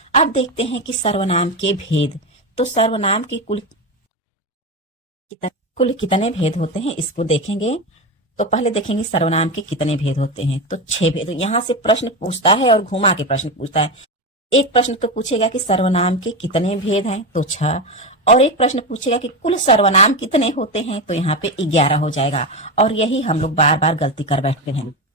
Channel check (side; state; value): both; normal; correlation 0.16